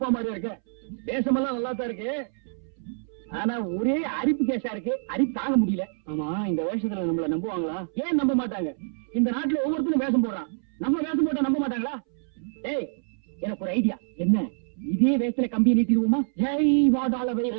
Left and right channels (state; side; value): silent; left; 61 dB below the other